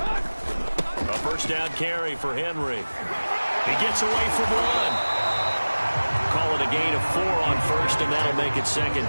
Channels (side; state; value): both; inverted; correlation -1.00